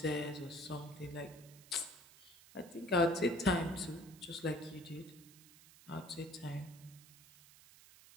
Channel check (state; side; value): noise; right; hiss, 21 dB below the sound